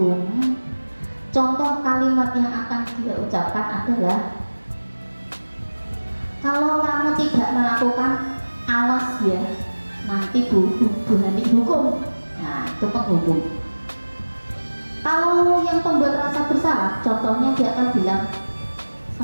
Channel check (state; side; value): inverted; both; correlation -1.00